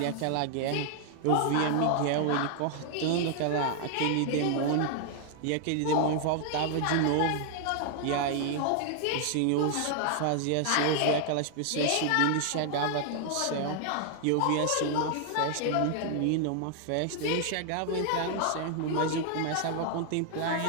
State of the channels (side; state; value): both; different; correlation 0.00